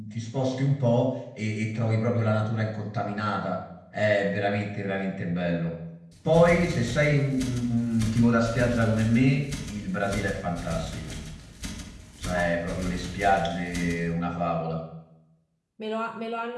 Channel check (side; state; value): both; identical; correlation 1.00